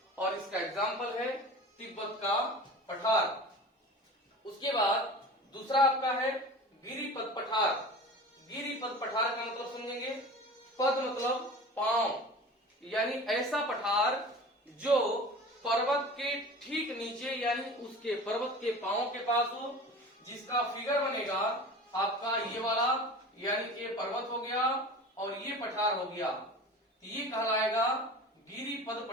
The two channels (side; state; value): both; normal; correlation 0.37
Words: और इसका एग्जाम्पल है तिब्बत का पठार। उसके बाद दूसरा आपका है गिरिपद पठार। गिरिपद पठार का मतलब समझेंगे, पद मतलब पांव, यानी ऐसा पठार जो पर्वत के ठीक नीचे यानी उसके पर्वत के पांव के पास हो, जिसका फिगर बनेगा आपका ये वाला, यानी ये पर्वत हो गया और ये पठार हो गया, ये कहलाएगा गिरिपद